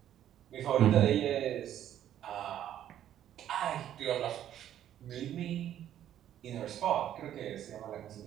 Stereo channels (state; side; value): quieter; left; 11.1 dB